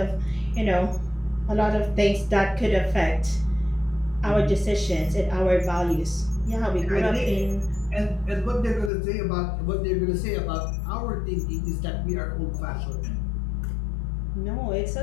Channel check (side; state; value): right; drops out; at 8.9 s